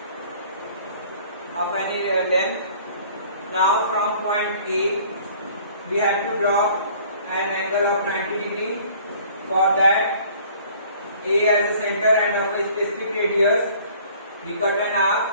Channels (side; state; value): both; inverted; correlation -0.53